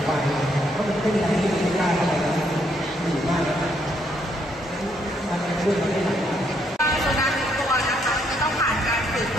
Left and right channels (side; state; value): both; normal; correlation 0.72